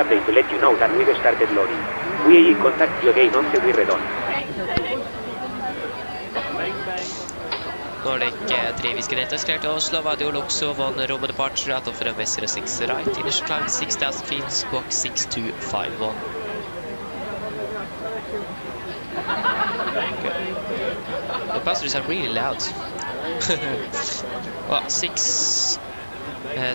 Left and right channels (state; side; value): inverted; both; correlation -1.00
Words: to let you know that we've started loading. We will contact you again once we're done. Nordic 3 Whiskey Delta cleared to Oslo, Vadio Luxo, 1 Roma departure out of runway 06 right, initial climb 6,000 feet, squawk 6251. The passengers are really loud. Well,